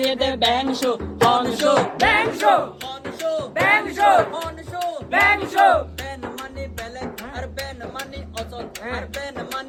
এদের ব্যাং শো হন শো ব্যাং শো হনশো ব্যাং শো হনশো ব্যাং শো বেন মানি বেলেগ আর বেন মানি অচল আর বেন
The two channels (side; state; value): both; identical; correlation 1.00